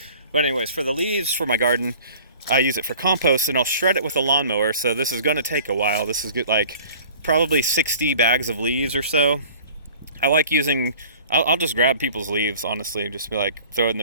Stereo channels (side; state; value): both; inverted; correlation -0.47